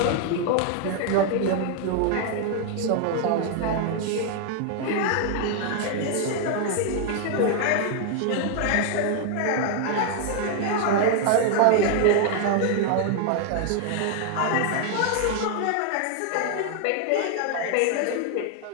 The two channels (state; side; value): different; both; correlation 0.00